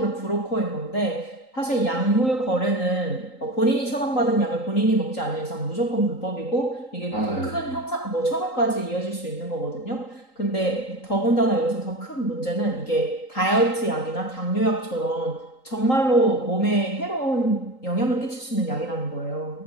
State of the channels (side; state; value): right; late; 3.8 ms